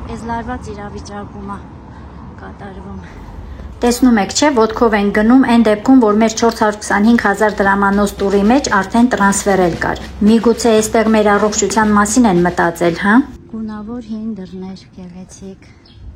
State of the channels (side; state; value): both; identical; correlation 1.00